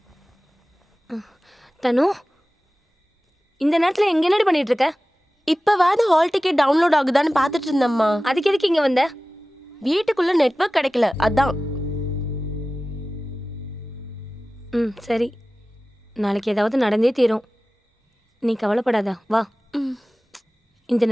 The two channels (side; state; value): both; normal; correlation 0.96